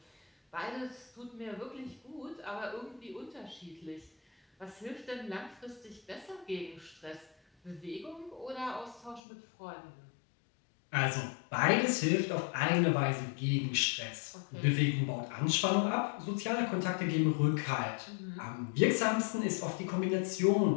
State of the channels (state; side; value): drops out; right; at 9.2 s